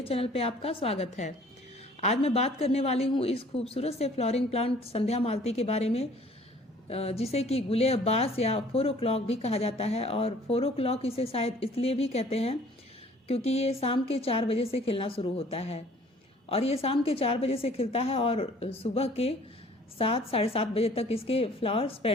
चैनल पे आपका स्वागत है। आज मैं बात करने वाली हूं इस खूबसूरत से फ्लोरिंग प्लांट संध्या मालती के बारे में, जिसे कि गुले अब्बास या 4 o'clock भी कहा जाता है। और 4 o'clock इसे शायद इसलिए भी कहते हैं क्योंकि ये शाम के 4 बजे से खिलना शुरू होता है और ये शाम के 4 बजे से खिलता है और सुबह के 7 साढ़े 7 बजे तक इसके फ्लावर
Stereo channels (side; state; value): both; normal; correlation 0.54